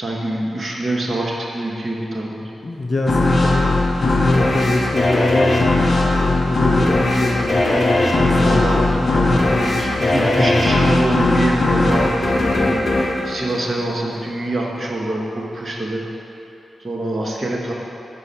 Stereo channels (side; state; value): both; normal; correlation 0.92